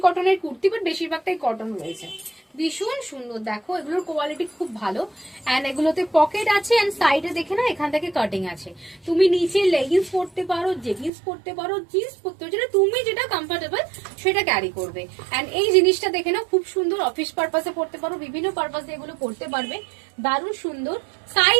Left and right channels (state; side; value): drops out; left; at 11.1 s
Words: কটনের কুর্তি, বাট বেশিরভাগটাই কটন রয়েছে। ভীষণ সুন্দর, দেখো এগুলোর কোয়ালিটি খুব ভালো। অ্যান্ড এগুলোতে পকেট আছে, অ্যান্ড সাইডে দেখে না এখান থেকে কাটিং আছে। তুমি নিচে লেগিংস পরতে পারো, জেগিংস পরতে পারো, জিন্স পরতে পারো, যেটা তুমি যেটা কমফোর্টেবল সেটা ক্যারি করবে। অ্যান্ড এই জিনিসটা দেখে না খুব সুন্দর, অফিস পারপাসে পড়তে পারো, বিভিন্ন পারপাসে এগুলো পড়তে পারবে। দারুণ সুন্দর।